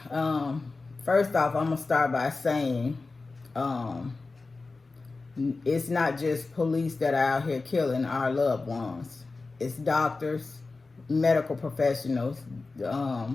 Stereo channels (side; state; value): right; quieter; 3.8 dB